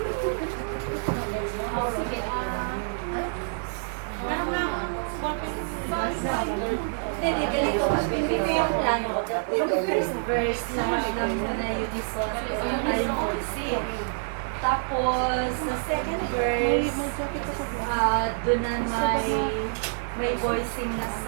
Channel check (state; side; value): silent; left; digital silence